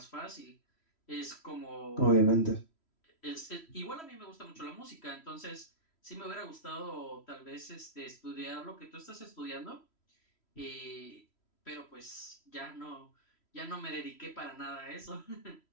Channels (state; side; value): late; right; 3.1 ms